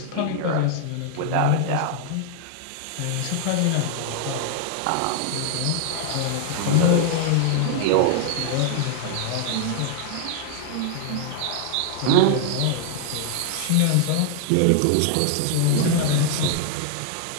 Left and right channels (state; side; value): different; both; correlation 0.00